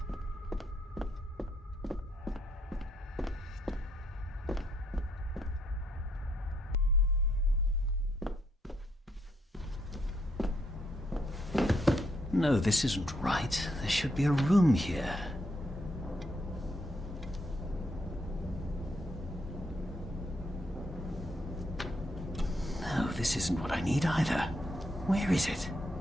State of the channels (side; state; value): both; normal; correlation 0.75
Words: No, this isn't right. There should be a room here. No, this isn't what I need either. Where is it?